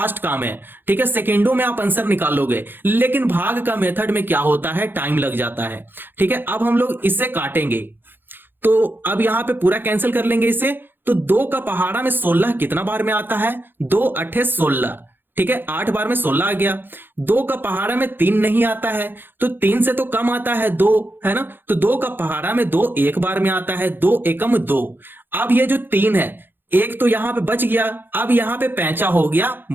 काम है। ठीक है, सेकंडों में आप आंसर निकाल लोगे, लेकिन भाग का मेथड में क्या होता है, टाइम लग जाता है। ठीक है, अब हम लोग इसे काटेंगे, तो अब यहां पे पूरा कैंसिल कर लेंगे इसे। तो 2 का पहाड़ा में 16 कितना बार में आता है, 2 8 16। ठीक है, 8 बार में 16 आ गया। 2 का पहाड़ा में 3 नहीं आता है, तो 3 से तो कम आता है 2, है ना। तो 2 का पहाड़ा में 2 एक बार में आता है, 2 एकम 2। अब ये जो 3 है, एक तो यहां पे बच गया, अब यहां पे पैंचा हो गया,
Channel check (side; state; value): left; late; 0.098 ms